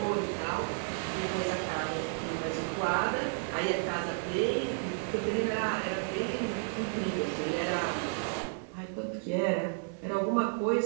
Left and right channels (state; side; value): silent; left; 56 dB below the other